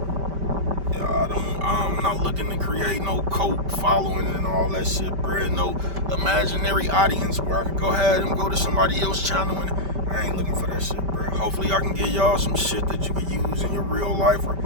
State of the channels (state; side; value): late; left; 5.1 ms